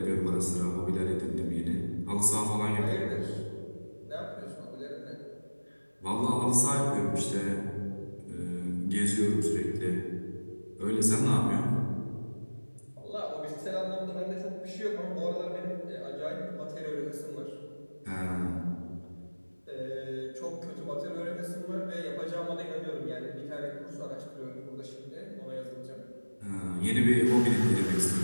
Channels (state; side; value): inverted; both; correlation -1.00